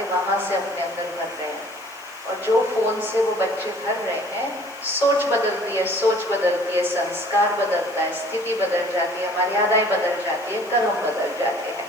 वहां से अपने अंदर भर रहे हैं। और जो फोन से वो बच्चे भर रहे हैं, सोच बदलती है, सोच बदलती है, संस्कार बदलता है, स्थिति बदल जाती है, मर्यादाएं बदल जाती है, कर्म बदल जाते हैं।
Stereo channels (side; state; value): right; noise; hiss, 24 dB below the sound